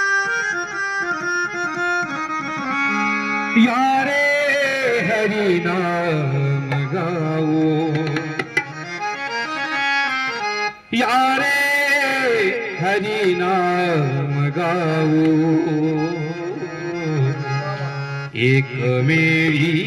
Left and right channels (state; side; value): identical; both; correlation 1.00